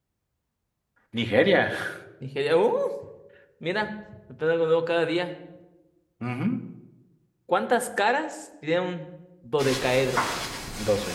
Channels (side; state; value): both; identical; correlation 1.00